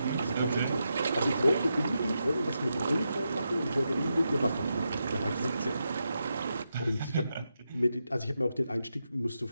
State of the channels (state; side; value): inverted; both; correlation -0.86